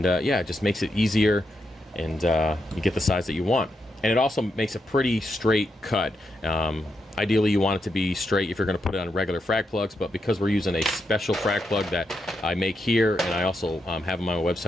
yeah, it just makes it easier, and you get the size that you want. And it also makes a pretty straight cut. Ideally, you want it to be straight if you're going to put it on regular frag plugs, but because we're using a special frag plug that I make here, and I also have on my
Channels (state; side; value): normal; both; correlation 0.83